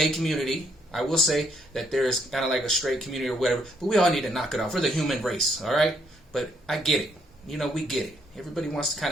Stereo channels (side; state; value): both; normal; correlation 0.71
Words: community, I will say that there is kind of like a straight community or whatever, but we all need to knock it off. We're the human race, all right? But I get it. You know, we get it. Everybody wants to kind